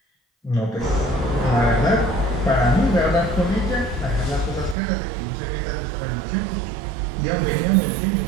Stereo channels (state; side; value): drops out; left; at 4.8 s